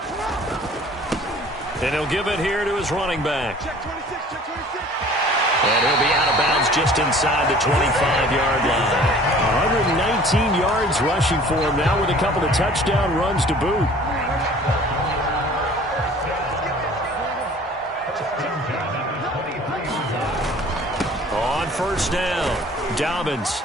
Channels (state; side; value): normal; both; correlation 0.49